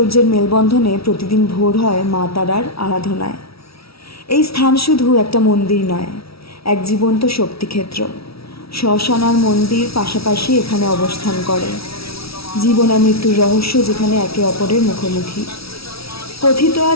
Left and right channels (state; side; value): late; right; 0.76 ms